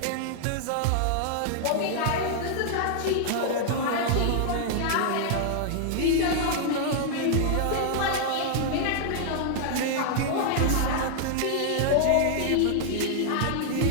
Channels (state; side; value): different; both; correlation -0.01